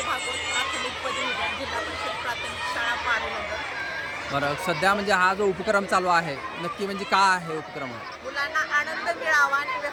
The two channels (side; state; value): both; identical; correlation 1.00